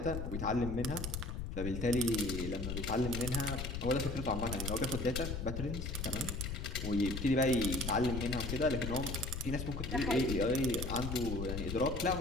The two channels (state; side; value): noise; left; rumble, 4 dB below the sound